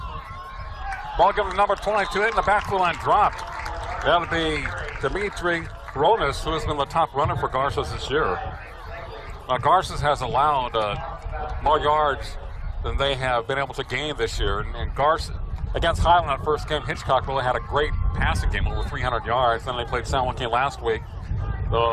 Ball given to number 22, hit in the backfield line, dropped. That'll be Dimitri Ronas, who has been the top runner for Garces this year. Garces has allowed more yards than they have been able to gain this year. And Garces, against Highland that first game, Hitchcock really had a great passing game, over 300 yards. Then they played San Joaquin last week.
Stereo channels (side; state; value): both; identical; correlation 1.00